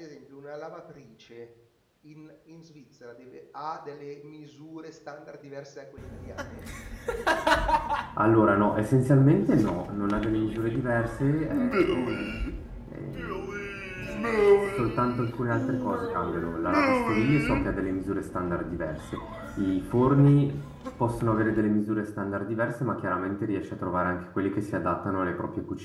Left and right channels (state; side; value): identical; both; correlation 1.00